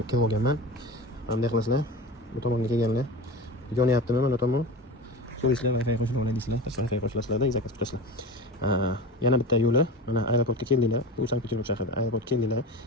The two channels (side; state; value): both; normal; correlation 0.30